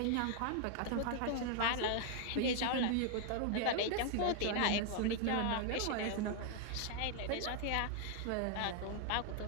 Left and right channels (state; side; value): different; both; correlation 0.00